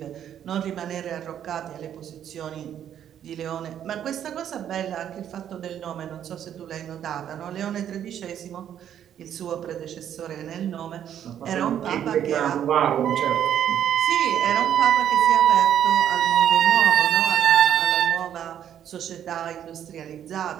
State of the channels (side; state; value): left; quieter; 9.9 dB